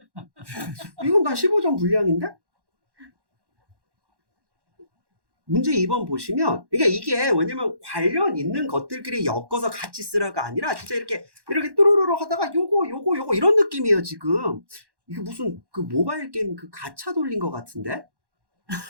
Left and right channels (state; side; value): late; left; 1.1 ms